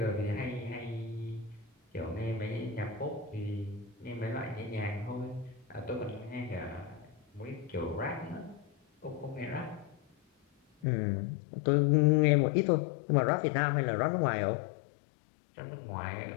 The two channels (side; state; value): right; drops out; at 10.9 s